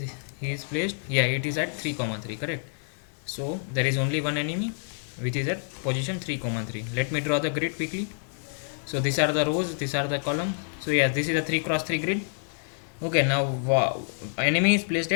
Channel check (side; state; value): right; silent; digital silence